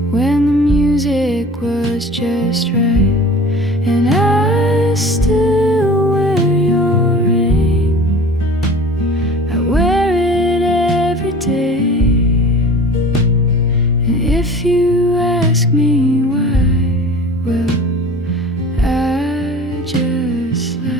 when the music was just right. And I still wear your ring, I wear it every day. And if you ask me why, well, I just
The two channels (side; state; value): both; normal; correlation 0.41